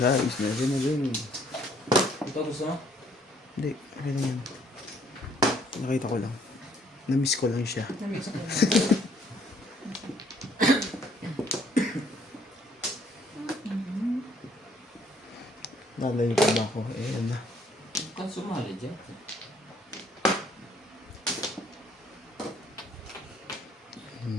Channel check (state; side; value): normal; both; correlation 0.64